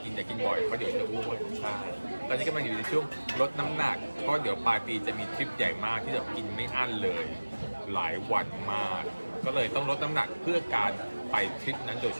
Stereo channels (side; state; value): both; inverted; correlation -1.00